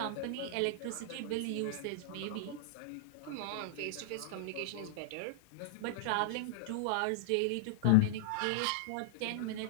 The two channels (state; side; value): different; both; correlation -0.01